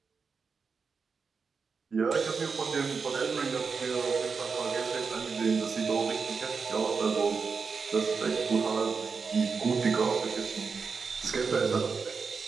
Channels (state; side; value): quieter; left; 5.2 dB